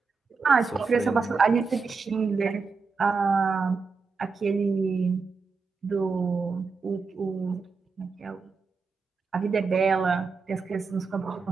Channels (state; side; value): quieter; left; 4.8 dB